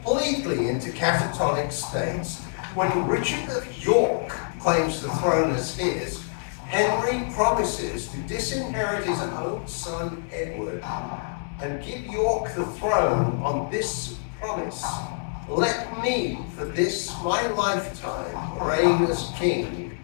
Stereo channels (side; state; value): right; silent; digital silence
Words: into catatonic states. When Richard of York claims the throne as his, Henry promises to disinherit his own son Edward and give York the throne on this promise: let me, for this my lifetime, reign as king.